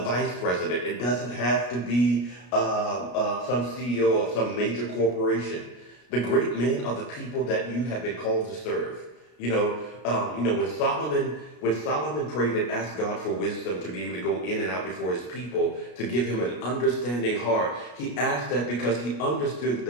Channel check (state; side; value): late; right; 33 ms